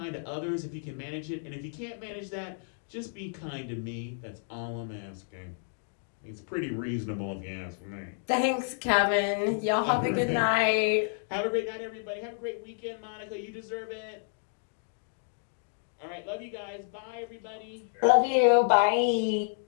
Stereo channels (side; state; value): right; silent; digital silence